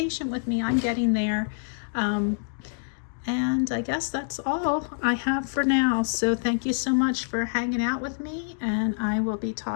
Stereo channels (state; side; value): silent; right; digital silence